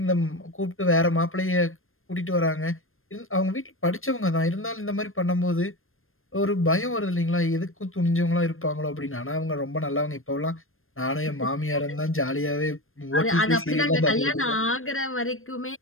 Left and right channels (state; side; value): late; right; 0.60 ms